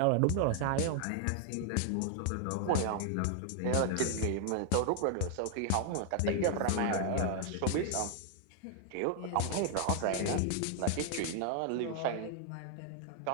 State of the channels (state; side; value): different; both; correlation 0.00